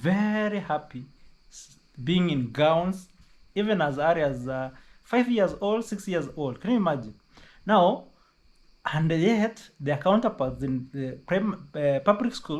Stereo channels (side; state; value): both; identical; correlation 1.00